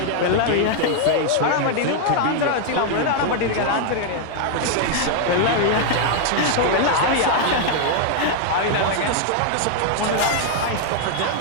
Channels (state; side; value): different; both; correlation 0.00